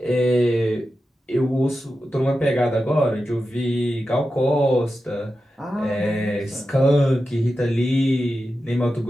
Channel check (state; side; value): normal; both; correlation 0.91